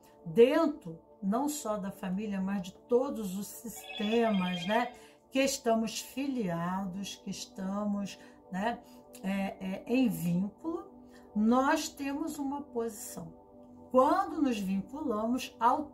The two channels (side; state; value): both; identical; correlation 1.00